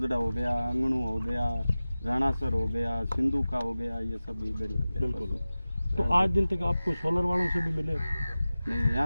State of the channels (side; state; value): both; inverted; correlation -0.96